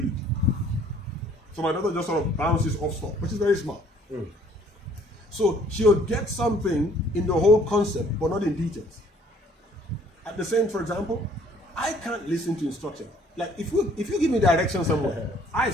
So my daughter just sort of bounces off stuff, which is very smart. So she'll get something in the whole concept, but not in details. At the same, for example, I can't listen to instruction. Like if you give me direction somewhere, I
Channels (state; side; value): normal; both; correlation 0.59